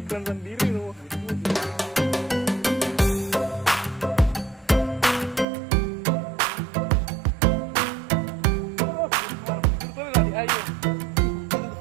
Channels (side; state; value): left; drops out; at 5.5 s